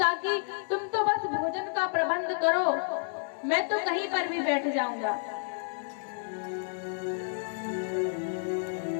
तुम तो बस भोजन का प्रबंध करो, मैं तो कहीं पर भी बैठ जाऊंगा।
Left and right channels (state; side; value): silent; right; digital silence